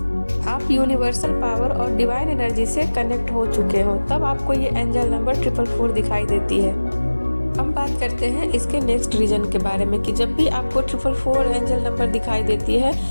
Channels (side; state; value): both; inverted; correlation -1.00